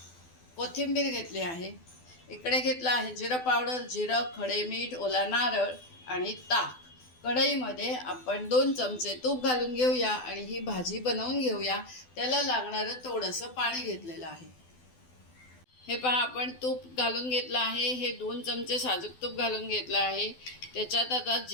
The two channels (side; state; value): right; late; 12 ms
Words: कोथिंबीर घेतली आहे। इकडे घेतला आहे जिरा पावडर, जिरं, खडे मीठ, ओला नारळ आणि ताक। कढईमध्ये आपण 2 चमचे तूप घालून घेऊया आणि ही भाजी बनवून घेऊया। त्याला लागणारं थोडंसं पाणी घेतलेलं आहे। हे पहा, आपण तूप घालून घेतलं आहे। हे 2 चमचे साजूक तूप घालून घेतलं आहे। त्याच्यात आता